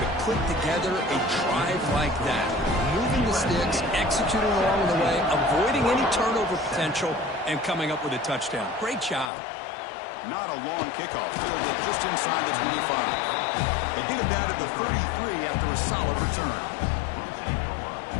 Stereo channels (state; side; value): drops out; right; at 9.3 s